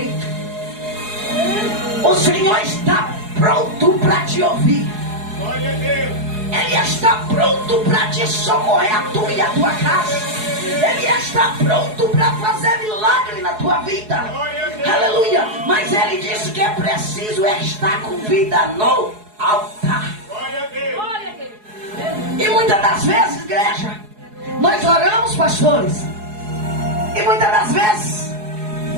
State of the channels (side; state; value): left; late; 4.7 ms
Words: O Senhor está pronto para te ouvir, ele está pronto para te socorrer, a tua e a tua casa, ele está pronto para fazer milagre na tua vida, aleluia, mas ele disse que é preciso estar com vida no altar. E muitas das vezes, igreja, nós oramos, pastores, E muitas das vezes